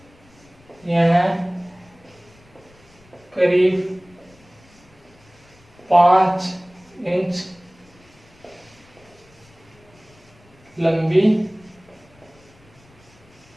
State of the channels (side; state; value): left; noise; rumble, 28 dB below the sound